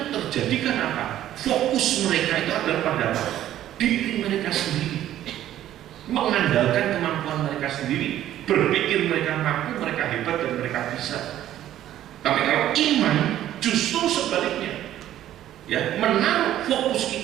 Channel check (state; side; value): quieter; left; 12.4 dB